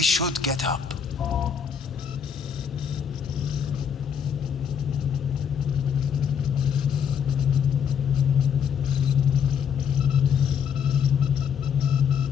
should get up.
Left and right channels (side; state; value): right; quieter; 7.3 dB